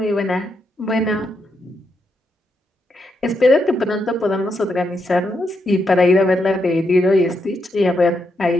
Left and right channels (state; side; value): normal; both; correlation 0.81